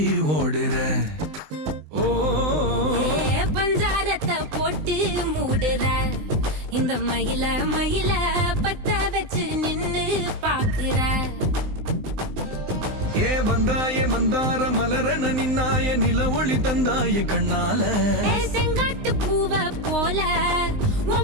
ஓடுற. ஓ பஞ்சாரத்தை போட்டு மூடுற இந்த மயில மயில பத்த வச்சு நின்னு பாக்குற. ஏ வந்தாய மந்தார மலரன நின்னாய நில ஒளி தந்தாய கண்ணால. செங்காட்டு பூவ போல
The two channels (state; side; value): late; left; 19 ms